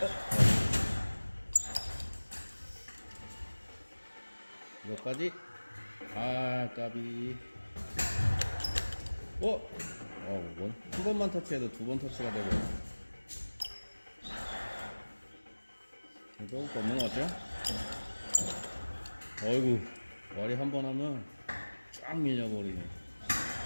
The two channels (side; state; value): both; inverted; correlation -1.00